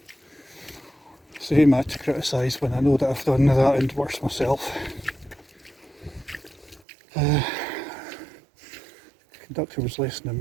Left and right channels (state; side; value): drops out; left; at 6.8 s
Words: So who am I to criticise when I know that I've done that and worse myself? conductor was less than